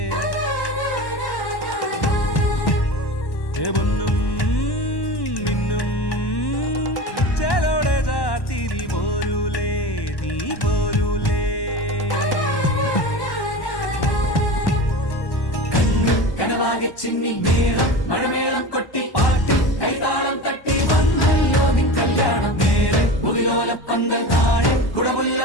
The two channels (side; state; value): right; late; 1.1 ms